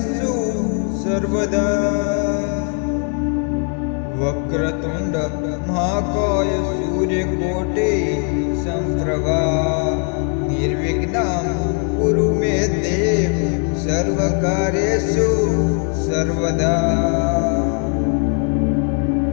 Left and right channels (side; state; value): right; quieter; 39.7 dB